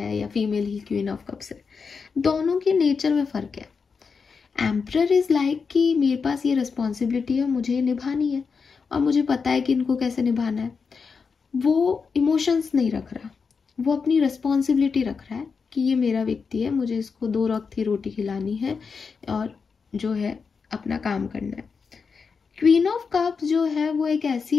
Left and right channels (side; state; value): right; quieter; 5.4 dB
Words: या female he queen of cups है, दोनों के नेचर में फर्क है। एम्परर इज लाइक कि मेरे पास ये रिस्पॉन्सिबिलिटी है, मुझे ये निभानी है और मुझे पता है कि इनको कैसे निभाना है। वो इमोशंस नहीं रख रहा, वो अपनी रिस्पॉन्सिबिलिटी रख रहा है कि ये मेरा व्यक्ति है, मुझे इसको 2 वक्त की रोटी खिलानी है और जो है अपना काम करना है। क्वीन ऑफ कप्स जो है वो एक